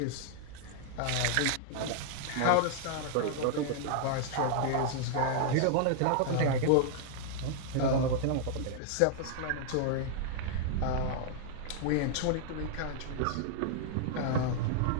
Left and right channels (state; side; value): different; both; correlation -0.01